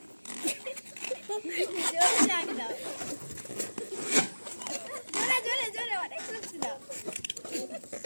জোরে ডাক দাও, জোরে জোরে জোরে, অনেক জোরে দাও।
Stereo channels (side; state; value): both; inverted; correlation -1.00